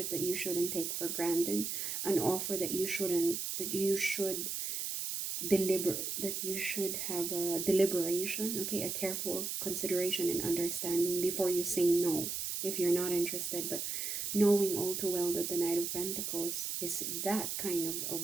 that you shouldn't take for granted, an offer that you should have a deliberation, okay, a careful consideration and understanding before you say no if you're not interested. But knowing all too well that the Knight of Pentacles is that kind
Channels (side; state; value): right; noise; hiss, 3 dB below the sound